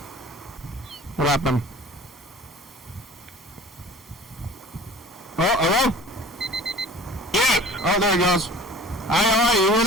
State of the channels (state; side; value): normal; both; correlation 0.45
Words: What happened? Oh, hello? Yes. Oh, there he goes. Hi, how are you? You hear